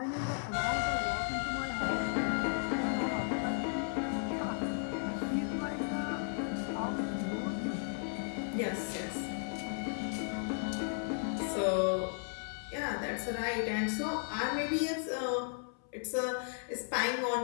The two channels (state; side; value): silent; right; 54 dB below the other